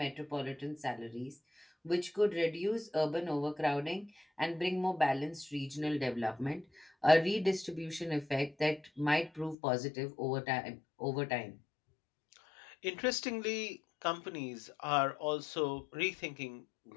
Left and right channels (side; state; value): right; drops out; at 9.6 s